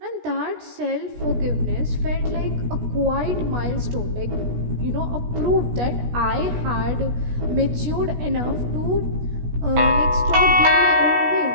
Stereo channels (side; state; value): left; late; 17 ms